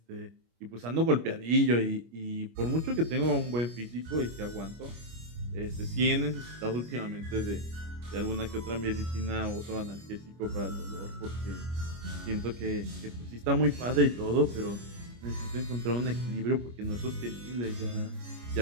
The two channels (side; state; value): left; late; 25 ms